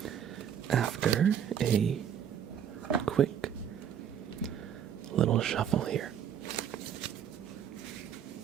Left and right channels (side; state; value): left; quieter; 8.8 dB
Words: After a quick little shuffle here.